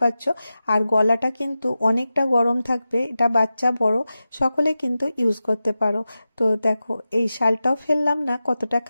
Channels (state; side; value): inverted; both; correlation -0.93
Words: আর গলাটা কিন্তু অনেকটা গরম থাকবে, এটা বাচ্চা বড় সকলে কিন্তু ইউজ করতে পারো। তো তো দেখো এই শালটাও ফেললাম না, কতটা